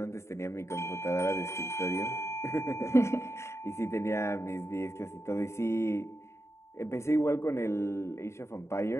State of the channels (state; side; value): late; right; 0.13 ms